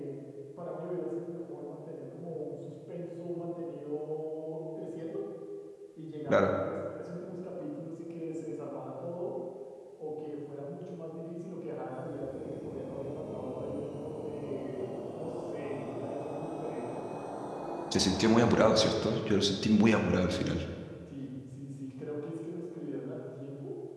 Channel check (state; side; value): identical; both; correlation 1.00